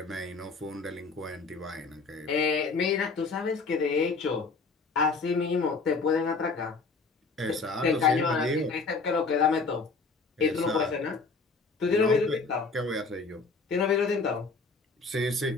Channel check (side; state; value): right; quieter; 4.2 dB